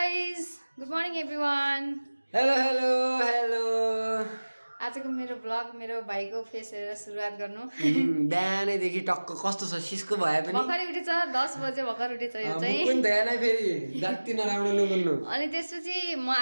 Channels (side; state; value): both; inverted; correlation -1.00